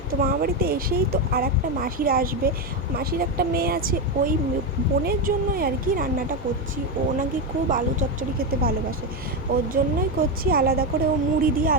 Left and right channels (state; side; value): normal; both; correlation 0.10